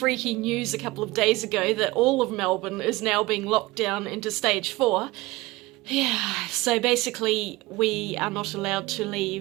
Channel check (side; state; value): left; quieter; 20.7 dB